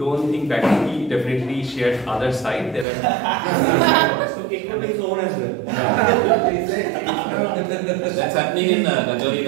think that he definitely shared other side. There are So including his own as well. That's happening in Rajori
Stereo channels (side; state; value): left; drops out; at 2.9 s